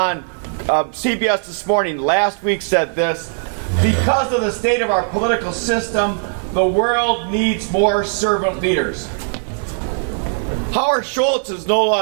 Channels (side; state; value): left; silent; digital silence